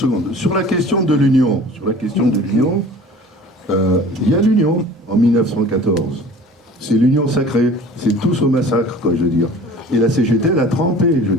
sur la question de l'union, il y a l'union en 1914. C'est l'union sacrée, c'est tous au massacre, quoi, je veux dire. Et la CGT, elle a trempé, je veux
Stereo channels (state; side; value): normal; both; correlation 0.44